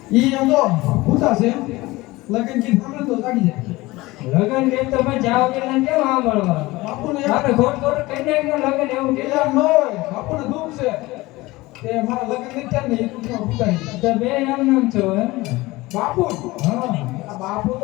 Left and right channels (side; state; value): right; quieter; 20.4 dB